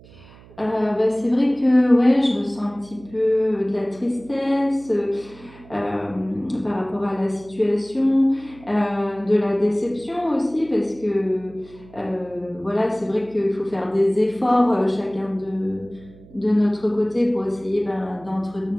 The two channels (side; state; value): right; noise; hum, 23 dB below the sound